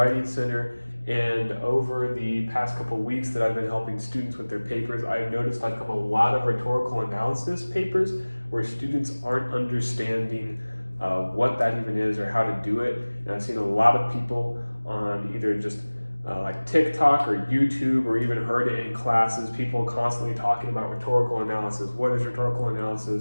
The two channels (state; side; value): inverted; both; correlation -1.00